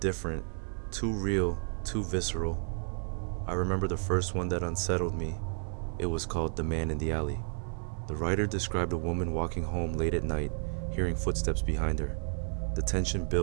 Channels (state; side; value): silent; left; 57 dB below the other